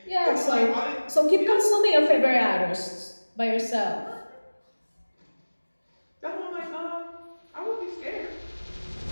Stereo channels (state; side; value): inverted; both; correlation -1.00